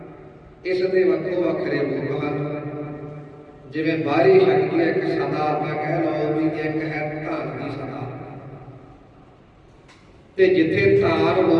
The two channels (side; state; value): both; identical; correlation 1.00